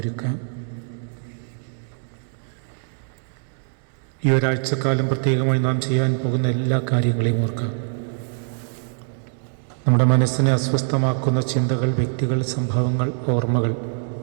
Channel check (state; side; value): silent; left; digital silence